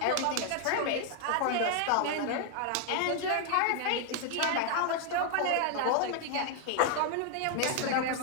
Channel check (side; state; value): both; different; correlation 0.00